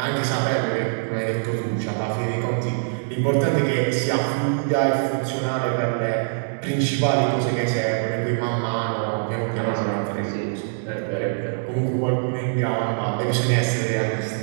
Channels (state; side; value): silent; left; digital silence